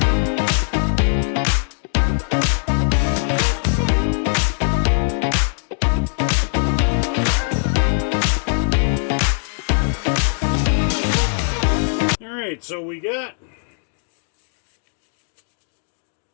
Alright, so we got...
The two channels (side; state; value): right; silent; digital silence